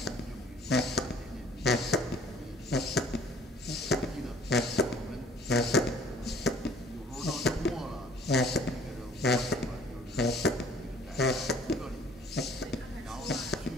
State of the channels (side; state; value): both; normal; correlation 0.54